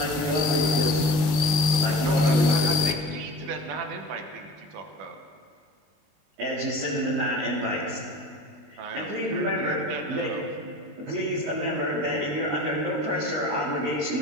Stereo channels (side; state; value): left; late; 20 ms